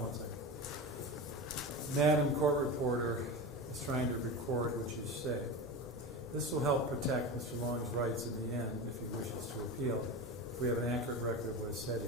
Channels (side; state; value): both; normal; correlation 0.25